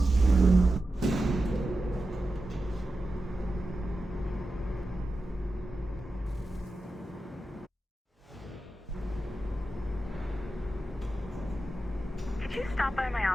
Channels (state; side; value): normal; both; correlation 0.92